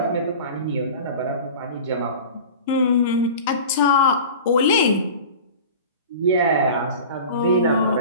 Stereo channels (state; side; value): inverted; both; correlation -0.36